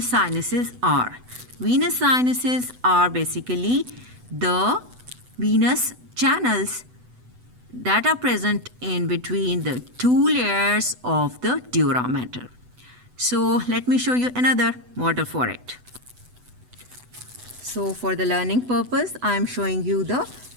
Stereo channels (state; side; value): late; left; 8.0 ms